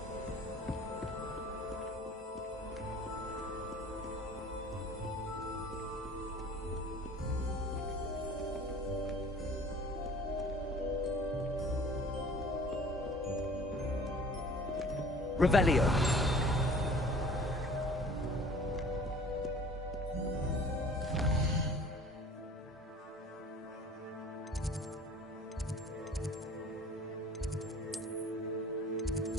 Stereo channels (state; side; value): normal; both; correlation 0.48